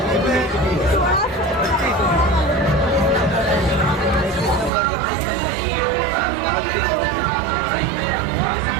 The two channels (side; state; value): left; drops out; at 4.7 s